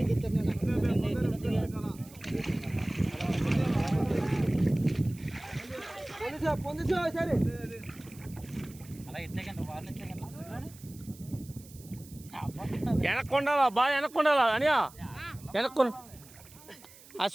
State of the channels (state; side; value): noise; right; hiss, 21 dB below the sound